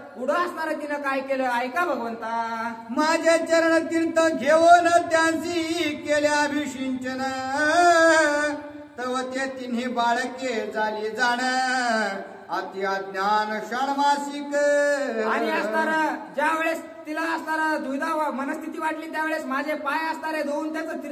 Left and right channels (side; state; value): both; identical; correlation 1.00